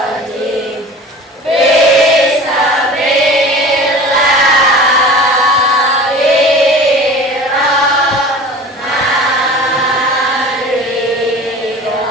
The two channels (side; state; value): both; normal; correlation 0.39